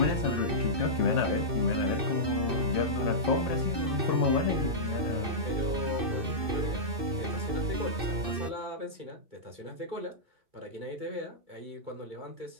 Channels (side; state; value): left; late; 2.6 ms